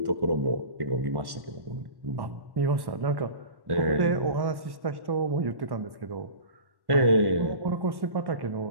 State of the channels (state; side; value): late; left; 1.1 ms